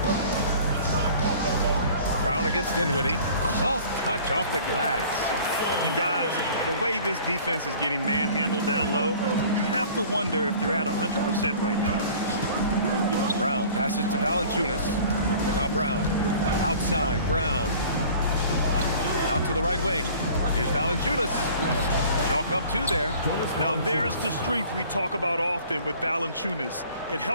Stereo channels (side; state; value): both; inverted; correlation -0.47